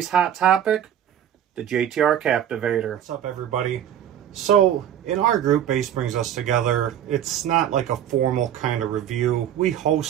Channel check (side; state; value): left; quieter; 10.1 dB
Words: hot topic, the JTR Captivator. What's up, everybody? So in our group, Bass Brings Us Together, it's not like a formal kind of review. We